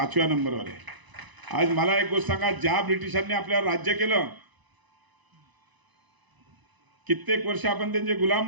नंबरवर आहे. आज मला एक गोष्ट सांगा, ज्या ब्रिटिशांनी आपल्यावर राज्य केलं, कित्येक वर्ष आपण त्यांचे गुलाम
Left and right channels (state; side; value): late; left; 1.0 ms